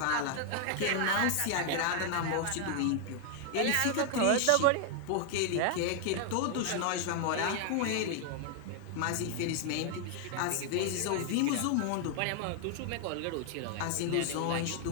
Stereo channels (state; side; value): different; both; correlation 0.00